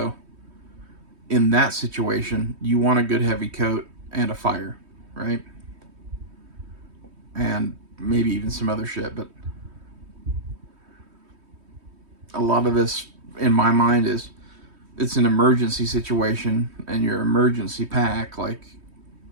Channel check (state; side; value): late; left; 3.2 ms